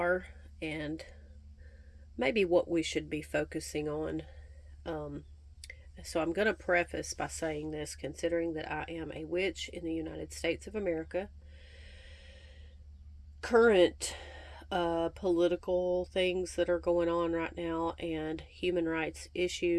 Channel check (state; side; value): identical; both; correlation 1.00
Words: and maybe what we should be focusing on. So I'm going to preface by saying this, considering that I am a witch in the United States of America. Current political things that are going on right now and human rights